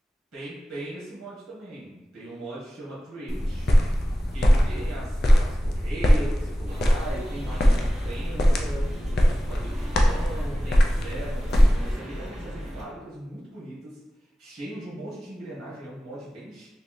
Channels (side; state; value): both; normal; correlation 0.96